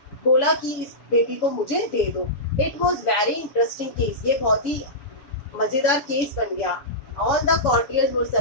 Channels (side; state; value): right; late; 7.0 ms